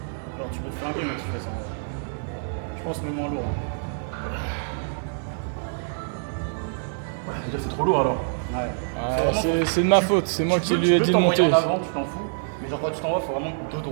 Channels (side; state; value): left; silent; digital silence